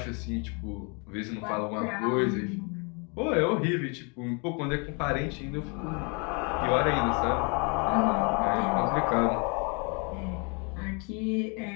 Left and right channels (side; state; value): right; quieter; 33.7 dB